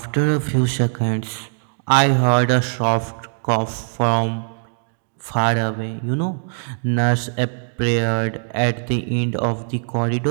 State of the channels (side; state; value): left; silent; digital silence